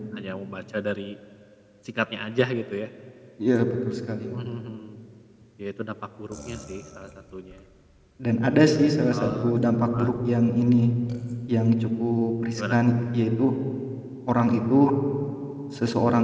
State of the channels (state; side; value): identical; both; correlation 1.00